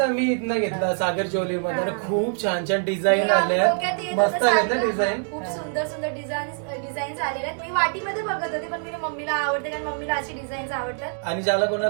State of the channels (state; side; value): silent; left; 58 dB below the other